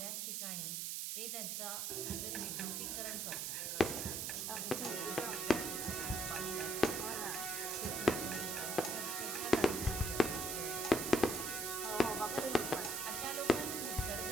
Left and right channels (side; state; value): right; noise; hiss, 1 dB below the sound